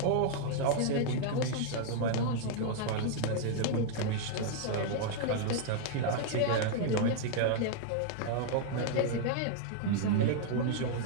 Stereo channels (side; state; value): both; different; correlation 0.00